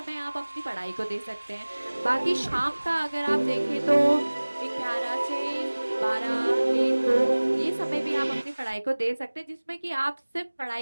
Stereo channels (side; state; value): both; inverted; correlation -1.00